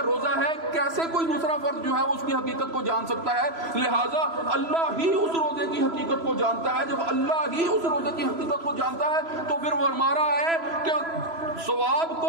روزہ ہے، کیسے کوئی دوسرا فرد جو ہے اس کی حقیقت کو جان سکتا ہے؟ لہٰذا اللہ ہی اس روزے کی حقیقت کو جانتا ہے۔ جب اللہ ہی اس روزے کی حقیقت کو جانتا ہے تو پھر وہ ہمارا ہے کہ ثواب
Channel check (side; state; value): left; late; 3.0 ms